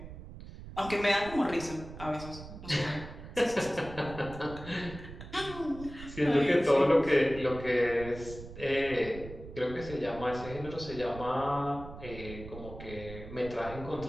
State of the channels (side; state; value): right; noise; rumble, 13 dB below the sound